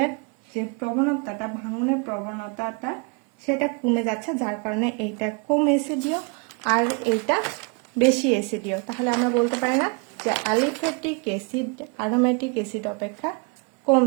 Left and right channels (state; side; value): quieter; left; 33.9 dB